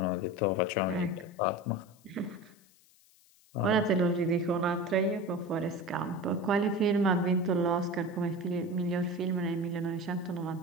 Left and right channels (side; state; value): left; noise; hiss, 29 dB below the sound